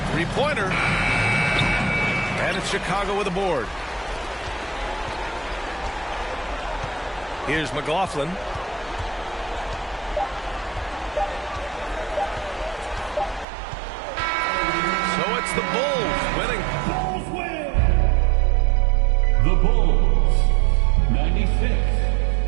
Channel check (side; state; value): left; drops out; at 13.5 s